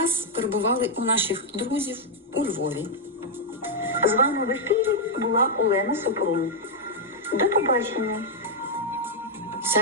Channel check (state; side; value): normal; both; correlation -0.03